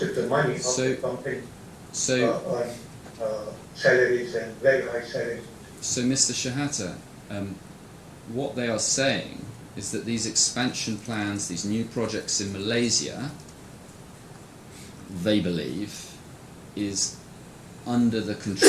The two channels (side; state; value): both; identical; correlation 1.00